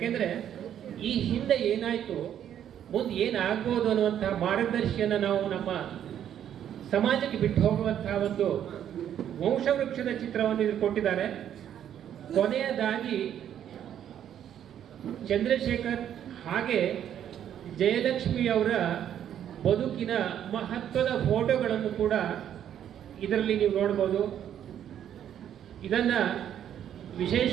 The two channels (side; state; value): left; quieter; 10.0 dB